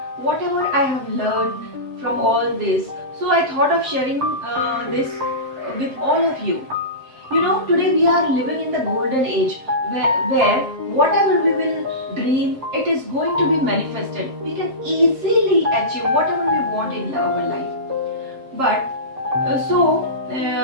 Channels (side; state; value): left; late; 7.6 ms